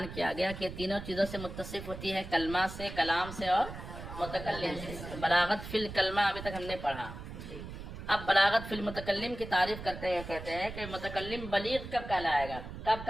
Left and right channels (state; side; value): noise; right; rumble, 10 dB below the sound